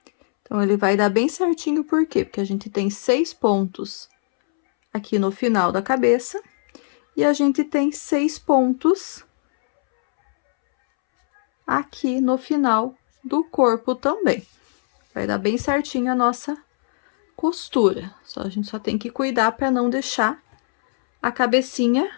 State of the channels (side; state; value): right; silent; 65 dB below the other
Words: Então, ele vai dar bem certinho, por quê? Porque a gente tem 6 pontos aqui no final da cabeça e a gente tem 6 pontos aqui no final do corpo também. Vai dar bem certinho a nossa costura. A gente só tem que cuidar para não deixar a cabecinha